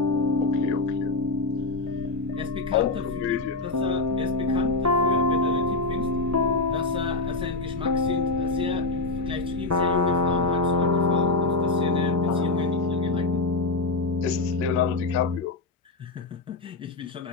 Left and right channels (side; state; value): right; quieter; 3.4 dB